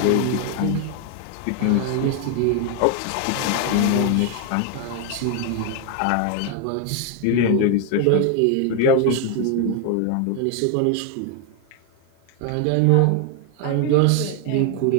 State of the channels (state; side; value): different; both; correlation 0.01